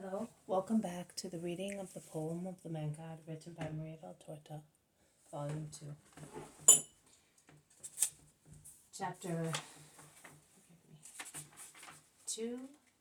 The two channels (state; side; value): identical; both; correlation 1.00